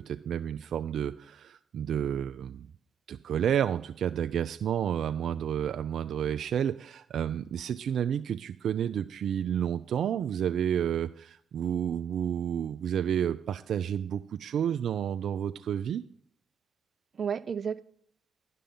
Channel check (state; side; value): quieter; left; 8.7 dB